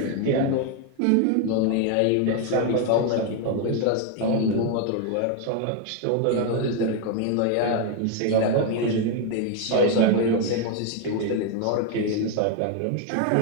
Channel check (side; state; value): both; different; correlation 0.01